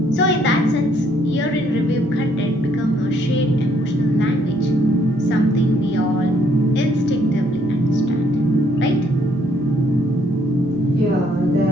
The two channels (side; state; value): both; normal; correlation 0.67